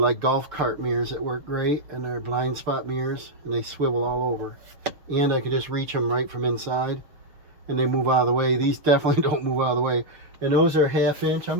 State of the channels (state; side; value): late; left; 6.7 ms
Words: golf cart mirrors that work great, and they're blind spot mirrors, and they swivel all over. And I can just reach them right from inside, and they move out of the way. These definitely don't move out of the way. And those are 1/2 inch. I'm